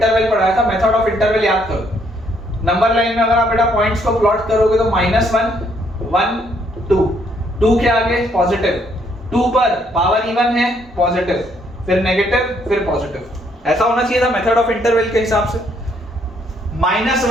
पढ़ाया था। मेथड ऑफ इंटरवल याद करो, नंबर लाइन में अगर आप बेटा पॉइंट्स को प्लॉट करोगे तो -1 1 2, 2 के आगे पॉजिटिव, 2 पर पावर इवन है पॉजिटिव, फिर नेगेटिव, फिर पॉजिटिव, ऐसा होना चाहिए था मेथड ऑफ इंटरवल के हिसाब से।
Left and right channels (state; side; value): normal; both; correlation 0.69